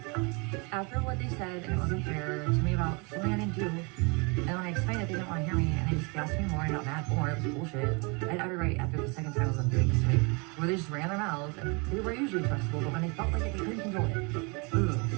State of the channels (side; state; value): left; quieter; 30.9 dB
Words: after what they said, and it wasn't fair to me about something I didn't do, and when I explained it, they didn't want to hear me, and they just gassed me more and got mad more. It was bullshit. I had every right after the second time I was doing this to me, where they just ran their mouths, and they were usually trustable, but when they felt like it, they couldn't control it. Ugh.